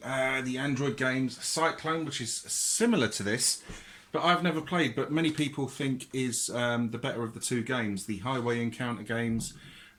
The Android games, Cyclone, which is similar to this, but I've never played, but many people think is the better of the two games, the Highway Encounter games,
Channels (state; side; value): identical; both; correlation 1.00